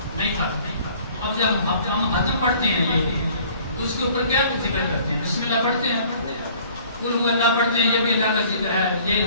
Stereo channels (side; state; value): both; inverted; correlation -0.54